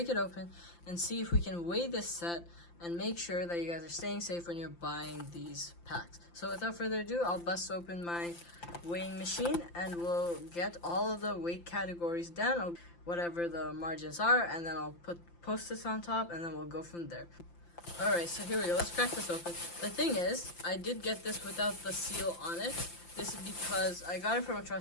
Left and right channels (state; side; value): late; right; 5.8 ms